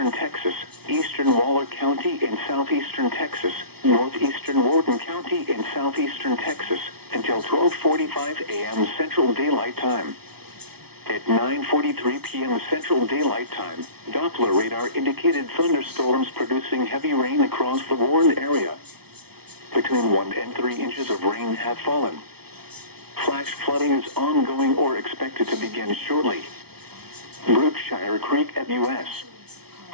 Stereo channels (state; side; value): late; left; 0.96 ms